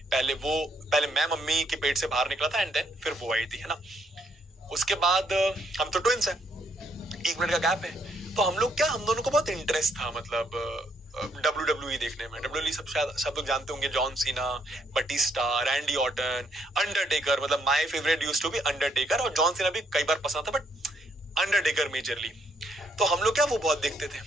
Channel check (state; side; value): normal; both; correlation 0.72